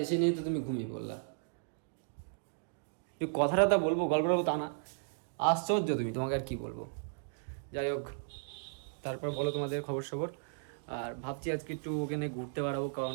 এসে নিয়ে তো তুমি ঘুমিয়ে পড়লা। তুই কথাটা বলবো, গল্প বলবো তা না, আশ্চর্য তুমি, তোমাকে আর কি বলবো। যাই হোক, তারপর বলো তোমাদের খবর সবর। আর ভাবছি আজকে একটু ওখানে ঘুরতে বেড়াবো, কারণ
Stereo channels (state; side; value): silent; left; digital silence